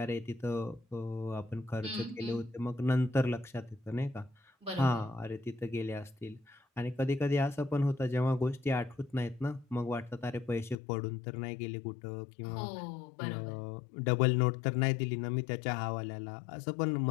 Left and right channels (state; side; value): drops out; right; at 10.8 s